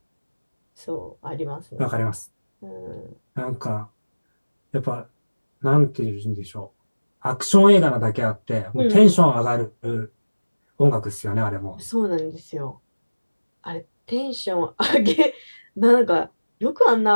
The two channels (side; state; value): both; inverted; correlation -1.00